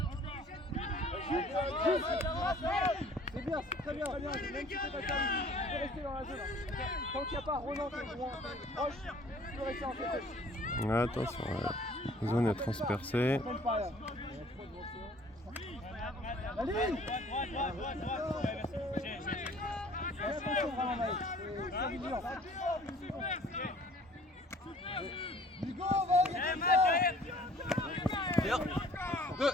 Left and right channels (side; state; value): both; normal; correlation 0.53